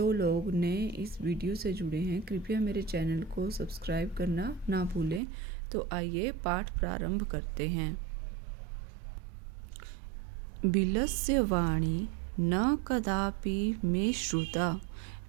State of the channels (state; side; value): drops out; left; at 5.2 s